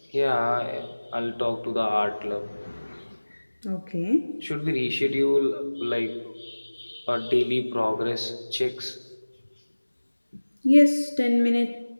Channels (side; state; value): both; inverted; correlation -1.00